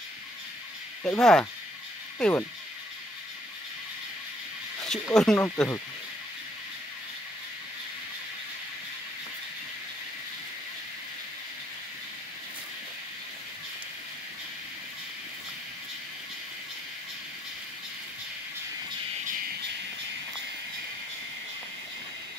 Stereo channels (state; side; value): normal; both; correlation 0.67